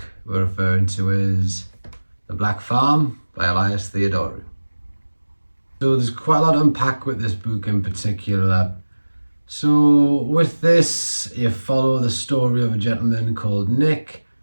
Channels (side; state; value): both; inverted; correlation -1.00